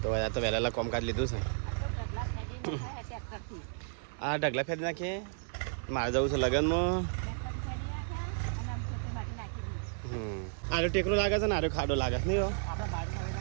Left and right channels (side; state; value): left; silent; digital silence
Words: તો ભાઈ આ તો વહેલા વહેલા કોમકાજ લીધું છે. આ ઢગલા ફેરી નાખીએ મારે જવું છે લગ્નમાં. આરો ટેકરો લાગે છે ને આરો ખાડો લાગે છે નહીં હો.